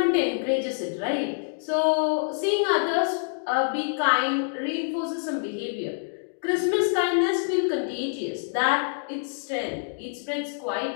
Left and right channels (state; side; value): silent; right; digital silence